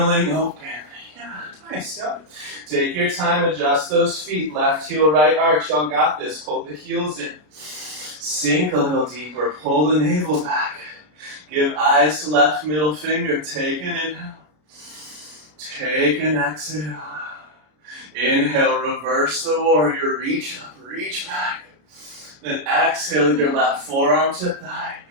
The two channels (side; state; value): left; late; 33 ms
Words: open. Yeah, nice, yep. Take your time, adjust those feet. Left heel, right arch. Y'all got this. Pull the heels in. Sink a little deeper. Pull the navel back. Give eyes to left middle finger. Take an inhale. Take an exhale. Inhale, reverse the warrior. Reach up, reach back. Then exhale, either left forearm to thigh